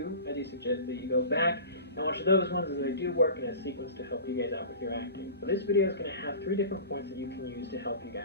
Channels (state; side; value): inverted; both; correlation -0.36